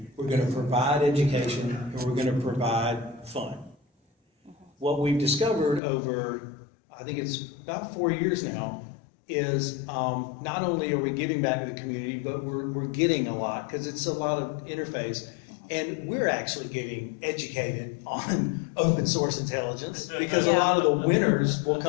we're going to provide education, and we're going to provide fun. What we've discovered over, I think it's about 4 years now, is not only are we giving back to the community, but we're getting a lot, because it's a lot of interface. And we're actually getting educated on open source intelligence, because a lot of the winners will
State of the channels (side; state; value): right; drops out; at 5.8 s